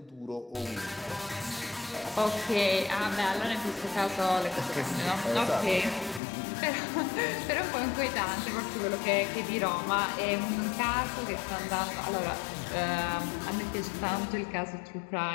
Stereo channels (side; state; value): right; drops out; at 6.2 s